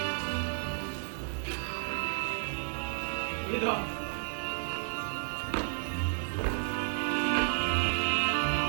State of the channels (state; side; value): silent; left; 56 dB below the other